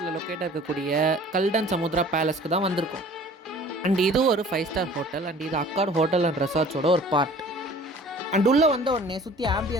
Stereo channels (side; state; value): both; normal; correlation 0.48